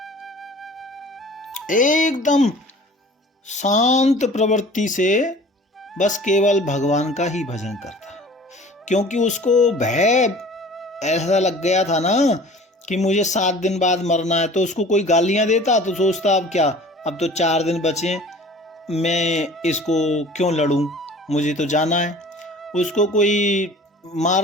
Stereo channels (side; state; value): both; normal; correlation 0.45